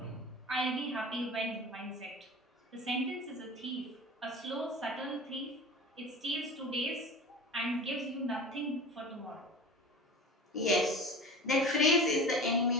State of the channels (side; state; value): both; normal; correlation 0.34